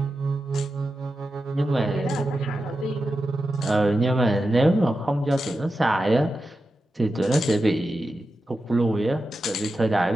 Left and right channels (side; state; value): both; normal; correlation 0.90